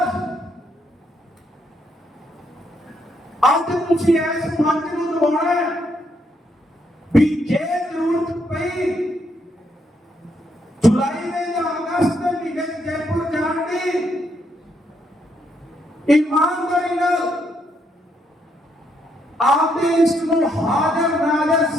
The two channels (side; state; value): both; normal; correlation 0.75